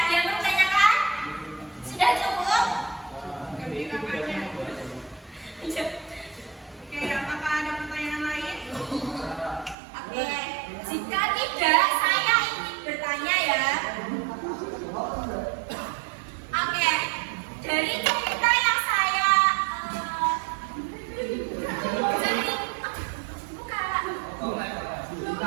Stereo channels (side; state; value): left; drops out; at 9.8 s